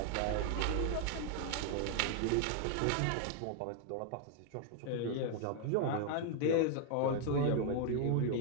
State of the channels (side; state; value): both; different; correlation 0.00